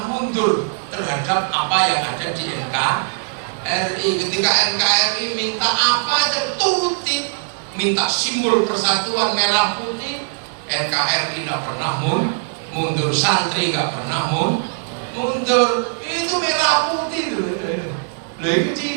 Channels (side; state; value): left; silent; digital silence